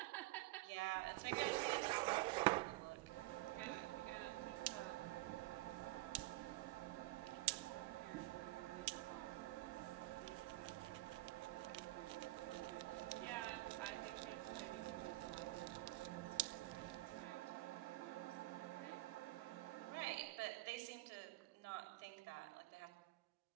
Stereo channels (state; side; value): quieter; left; 19.9 dB